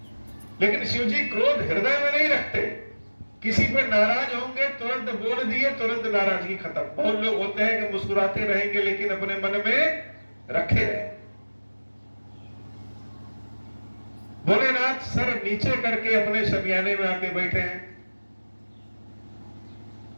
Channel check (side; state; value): both; inverted; correlation -1.00